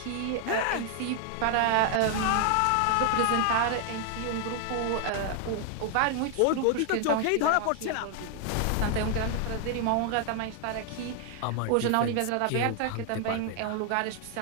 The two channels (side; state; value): both; different; correlation 0.00